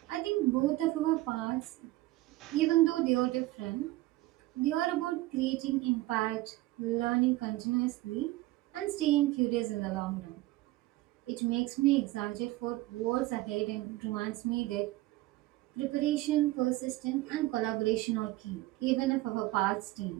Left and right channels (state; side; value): quieter; left; 18.1 dB